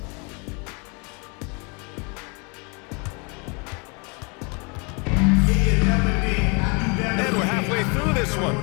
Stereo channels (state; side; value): quieter; right; 32.3 dB